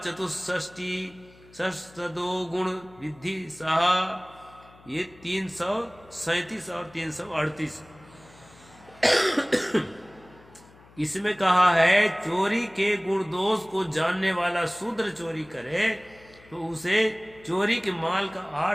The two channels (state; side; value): noise; left; hum, 25 dB below the sound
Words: षष्ठदो गुण विधि सहा। ये 337 और 338 इसमें कहा है चोरी के गुण दोष को जानने वाला शूद्र चोरी करे तो उसे चोरी के माल का